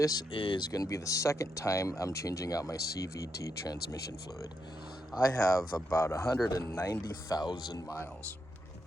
is going to be the second time I'm changing out my CVT transmission fluid. I have about 190,000 miles.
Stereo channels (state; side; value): normal; both; correlation 0.82